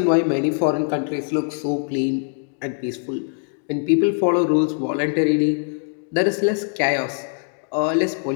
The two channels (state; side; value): silent; right; 57 dB below the other